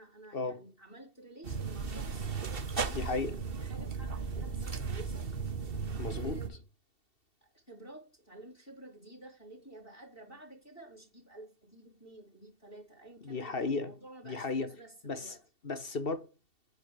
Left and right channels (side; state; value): right; late; 2.7 ms